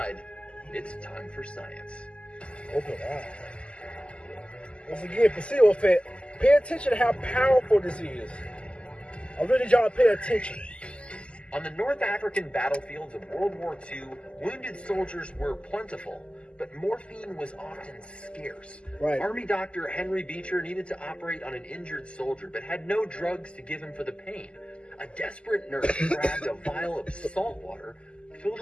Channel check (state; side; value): late; right; 0.053 ms